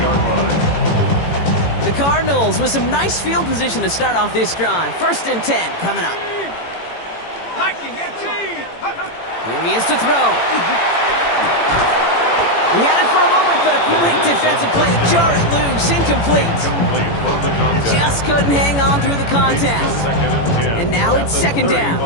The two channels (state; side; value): late; right; 18 ms